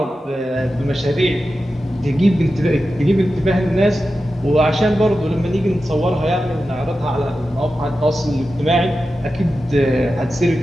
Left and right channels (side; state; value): both; normal; correlation 0.92